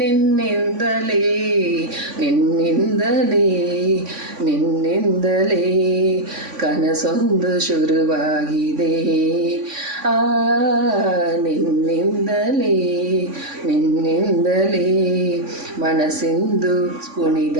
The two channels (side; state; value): left; late; 3.5 ms